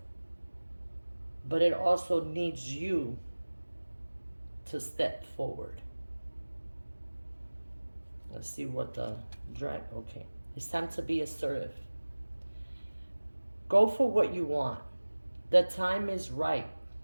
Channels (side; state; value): both; inverted; correlation -1.00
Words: But it also needs you to step forward. Let's see what the dragon, okay. It's time to be assertive. Go for what you want. The time is right